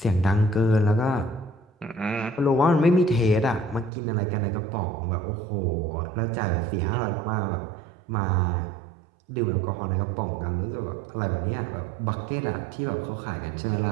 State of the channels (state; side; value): drops out; left; at 3.9 s